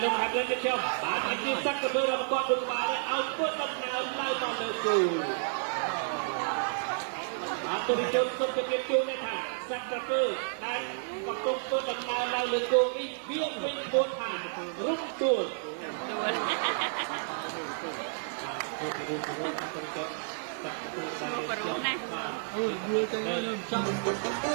លោកហាត់lênចុះបាទអាជីពសក្តិភាពរបស់គាត់ដូចបានឲ្យពុតដំណើរឡើងមកលើគូបាទទូរទស្សន៍សុខភាពជួនថាសក្តិភាពដែលកំពុងពុតដំណើរឡើងលើគូនេះវាវិញពោលថារុំទួលបរុណាអូយយល់ទៅខ្ញុំចង់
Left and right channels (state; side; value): silent; left; digital silence